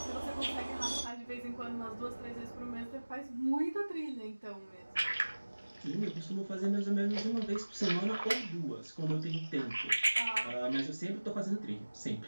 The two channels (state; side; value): inverted; both; correlation -1.00